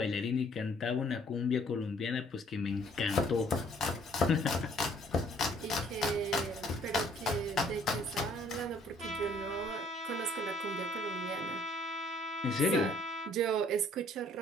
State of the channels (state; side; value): normal; both; correlation 0.60